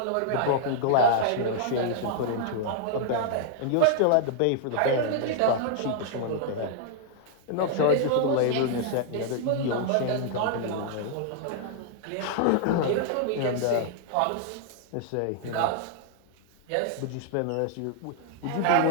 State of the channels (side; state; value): both; different; correlation -0.01